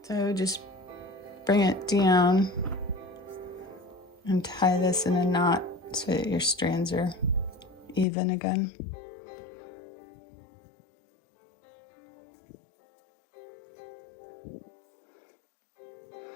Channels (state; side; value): drops out; right; at 8.1 s